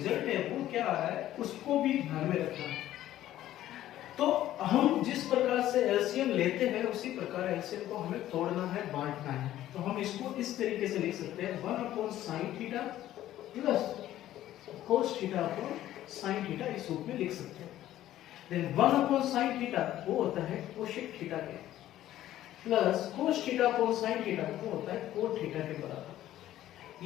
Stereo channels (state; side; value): quieter; right; 13.3 dB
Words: है वो क्या आ रहा है उसको भी ध्यान में रखना है। तो हम जिस प्रकार से एलसीएम लेते हैं उसी प्रकार एलसीएम को हमें तोड़ना है, बांटना है। तो हम इसको इस तरीके से लिख सकते हैं 1 upon sine theta plus cos theta upon sine theta इस रूप में लिख सकते हैं। देन 1 अपॉन साइन थीटा वो होता है कोसेक थीटा के, plus cos theta upon sine theta वो होता है कोट थीटा के बराबर।